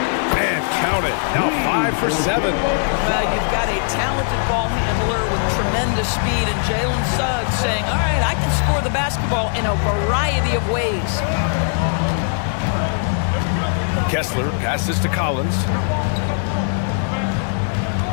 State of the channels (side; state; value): right; silent; digital silence